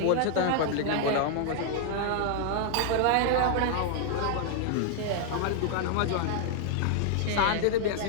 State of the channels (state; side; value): different; both; correlation 0.00